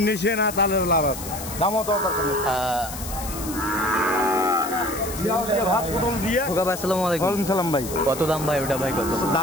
নেছে না, তাহলে লাভ আছে। দামও তো ভাই কত দাম ভাই? ওটা ভাই কত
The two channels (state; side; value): noise; left; hiss, 10 dB below the sound